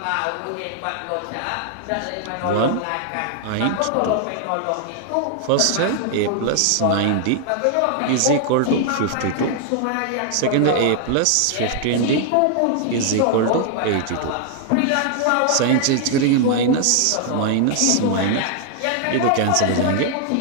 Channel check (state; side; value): different; both; correlation 0.00